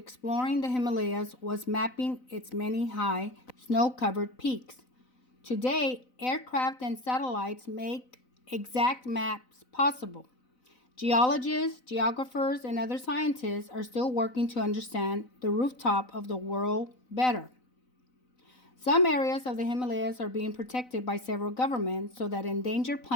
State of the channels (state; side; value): late; right; 4.0 ms